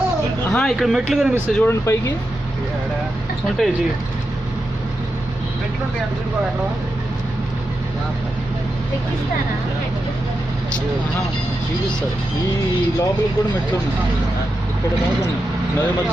ఇక్కడ మెట్లు కనిపిస్తాయి చూడండి, పైకి ఉంటాయి. చూపిస్తారు. ఈ లోపలికి కూడా మెట్లు ఉన్నాయి. ఇక్కడ దాకా నది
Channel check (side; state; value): both; normal; correlation 0.88